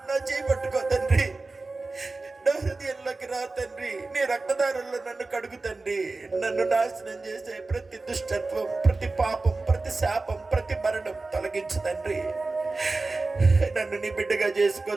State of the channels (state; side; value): quieter; left; 3.5 dB